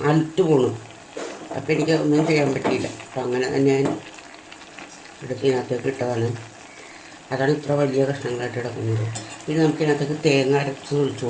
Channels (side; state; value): both; identical; correlation 1.00